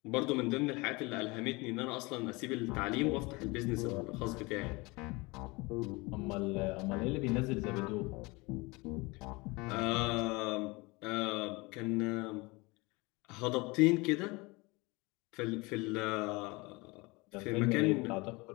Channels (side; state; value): right; quieter; 24.9 dB